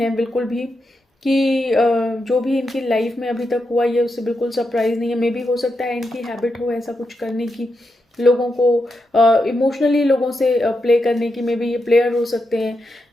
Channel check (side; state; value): both; normal; correlation 0.85